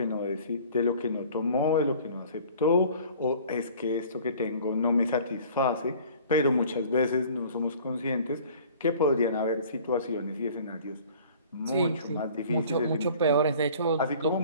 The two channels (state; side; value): inverted; both; correlation -0.49